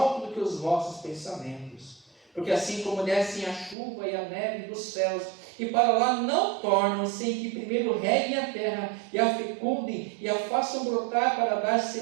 do que os vossos pensamentos. Porque assim como descem a chuva e a neve dos céus, e para lá não tornam, sem que primeiro reguem a terra, e a fecundem, e a façam brotar para dar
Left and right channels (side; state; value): left; drops out; at 3.8 s